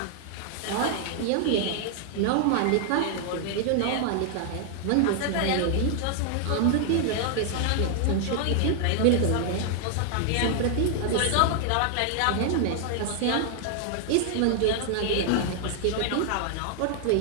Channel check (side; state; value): both; different; correlation 0.00